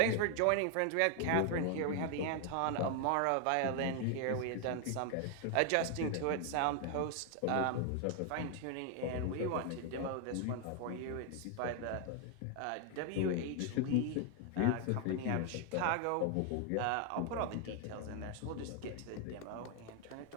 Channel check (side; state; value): both; different; correlation 0.00